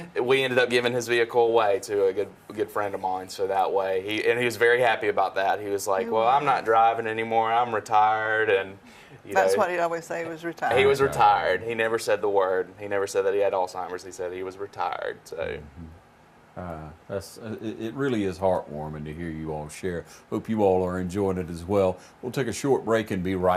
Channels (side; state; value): both; identical; correlation 1.00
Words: We ended up giving his vehicle away to a good friend of mine, so that way he was very happy about that. He was like, "Well, I'm not driving anymore. I'm retired," and that's what he'd always say. He was retired. He was retired. He never said the word. He never said that he had Alzheimer's. He said he was retired. So. It really is heartwarming to hear you all share. Hope you all are enjoying it as well. We'll take a short break and be